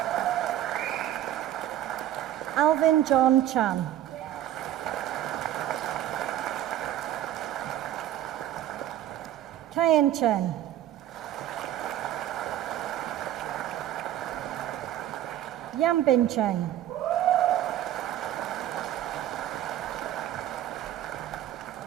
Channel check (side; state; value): left; quieter; 12.4 dB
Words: Alvin John Chan. Kayan Chen. Yambin Cheng.